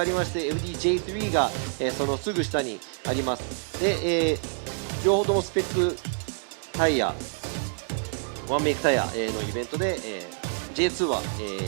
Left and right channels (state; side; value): silent; left; digital silence